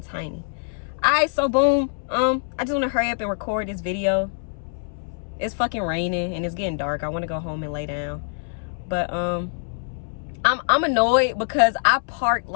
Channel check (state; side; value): silent; right; 62 dB below the other